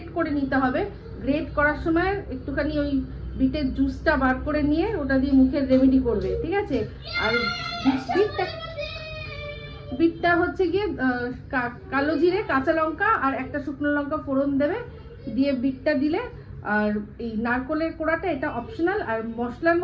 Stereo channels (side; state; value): both; identical; correlation 1.00